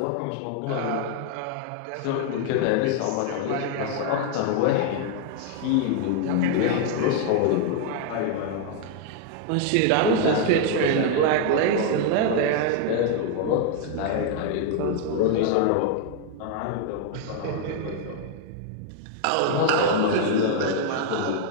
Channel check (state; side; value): different; both; correlation 0.00